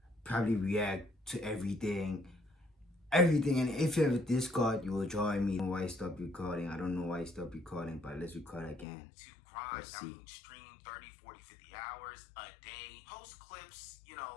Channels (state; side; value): drops out; right; at 8.8 s